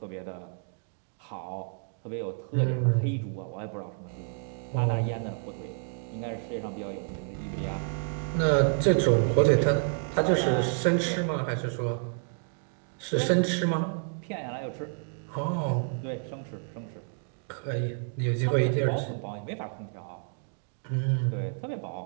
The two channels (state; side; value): silent; left; 58 dB below the other